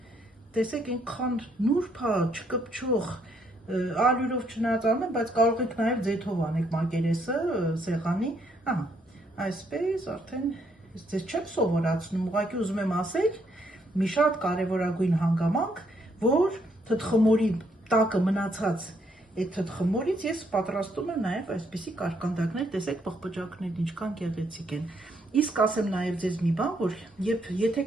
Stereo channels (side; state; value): both; normal; correlation 0.72